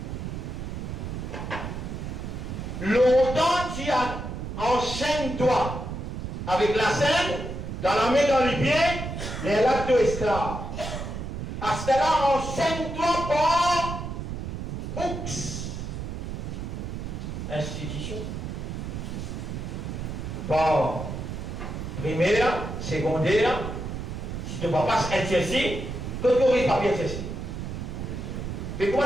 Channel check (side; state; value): right; noise; rumble, 6 dB below the sound